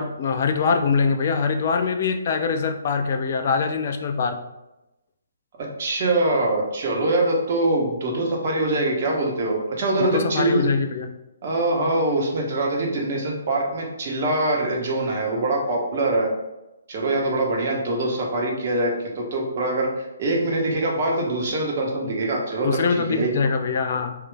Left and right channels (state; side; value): inverted; both; correlation -0.54